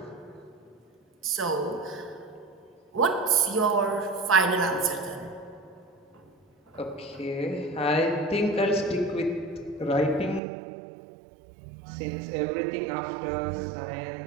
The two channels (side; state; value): left; drops out; at 10.4 s